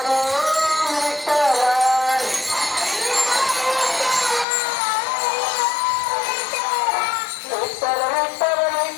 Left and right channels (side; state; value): right; drops out; at 4.5 s